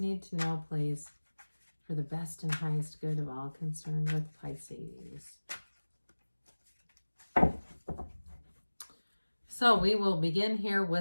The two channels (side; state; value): both; inverted; correlation -1.00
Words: need to know, please, for the best and highest good of all concerned with Pisces? So we will begin here